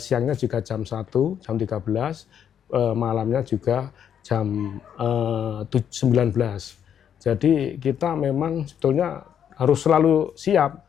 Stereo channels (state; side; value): quieter; right; 8.8 dB